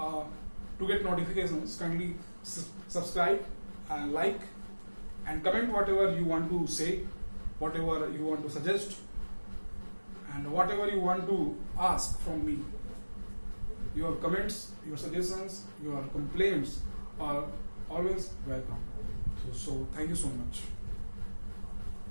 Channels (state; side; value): inverted; both; correlation -1.00